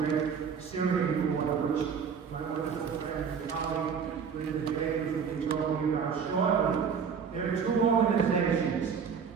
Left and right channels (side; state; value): left; quieter; 6.6 dB